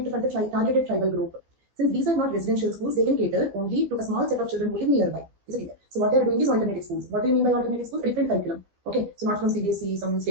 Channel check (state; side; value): late; left; 15 ms